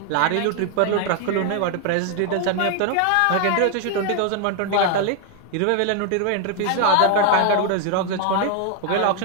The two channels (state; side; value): different; both; correlation 0.00